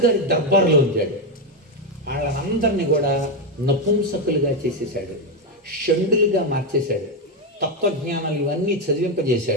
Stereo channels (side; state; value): both; normal; correlation 0.06